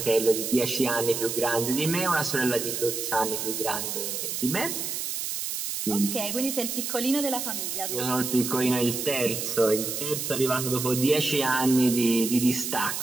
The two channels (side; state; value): right; noise; hiss, 3 dB below the sound